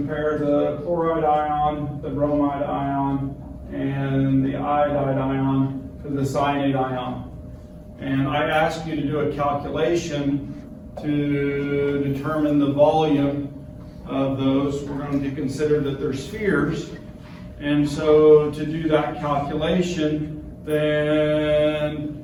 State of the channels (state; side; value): identical; both; correlation 1.00